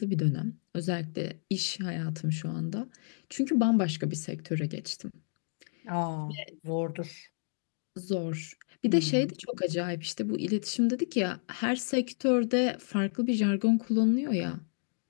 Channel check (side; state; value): right; silent; digital silence